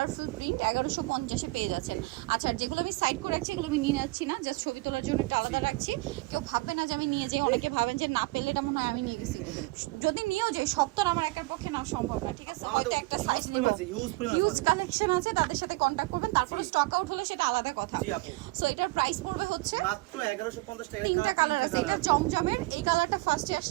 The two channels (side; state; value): left; quieter; 22.9 dB